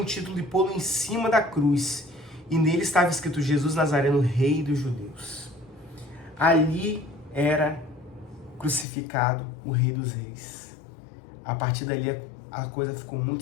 título de pô-lo em cima da cruz, e nele estava escrito: Jesus Nazareno, Rei dos Judeus. Ali era crucificado o Rei dos Reis. A partir dali a coisa ficou muito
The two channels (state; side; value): drops out; right; at 8.8 s